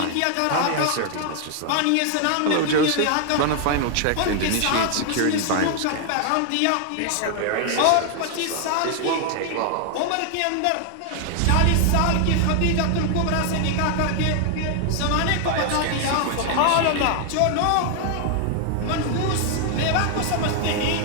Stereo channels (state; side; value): different; both; correlation 0.00